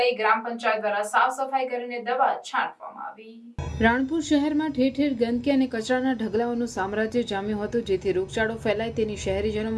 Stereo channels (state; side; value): identical; both; correlation 1.00